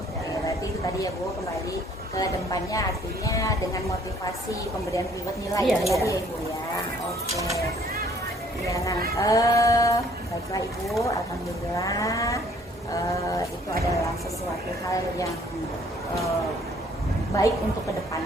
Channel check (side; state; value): both; normal; correlation 0.60